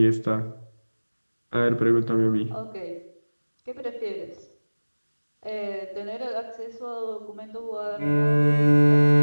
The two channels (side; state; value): both; inverted; correlation -1.00